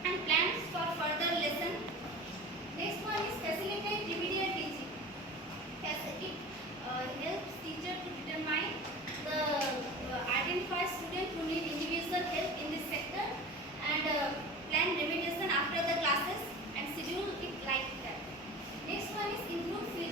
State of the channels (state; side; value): normal; both; correlation 0.35